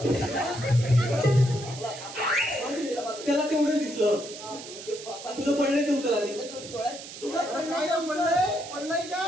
त्याला तेवढं दिसलं तुझं पडलंय ते उचल आधी तुला काय पडलंय पडलंय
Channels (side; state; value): right; noise; hiss, 13 dB below the sound